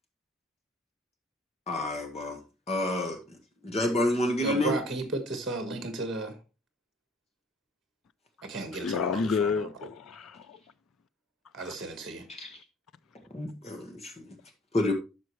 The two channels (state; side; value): normal; both; correlation 0.55